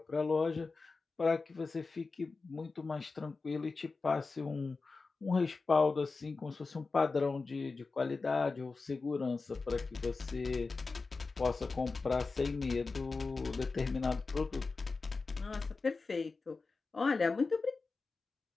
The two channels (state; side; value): quieter; right; 4.1 dB